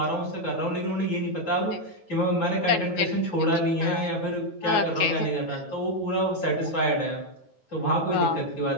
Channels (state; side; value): late; right; 9.3 ms